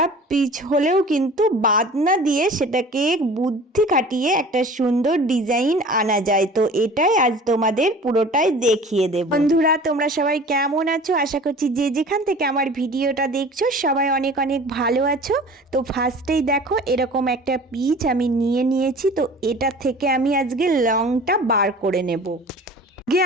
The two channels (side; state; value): both; normal; correlation 0.43